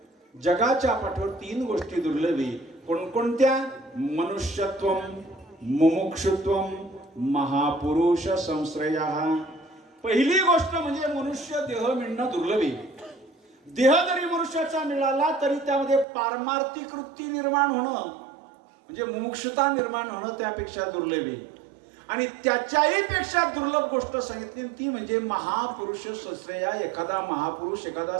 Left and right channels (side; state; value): left; drops out; at 16.1 s